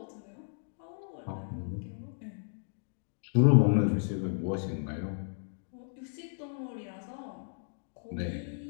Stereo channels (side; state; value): right; silent; digital silence